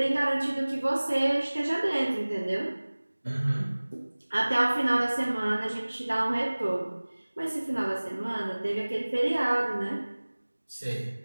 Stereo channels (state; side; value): inverted; both; correlation -1.00